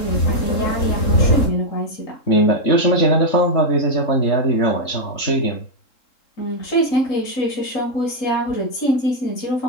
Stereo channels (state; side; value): late; right; 3.7 ms